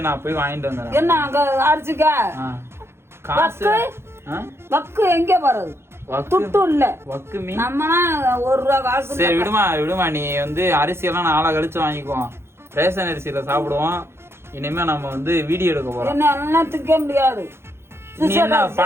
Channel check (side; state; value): left; late; 0.12 ms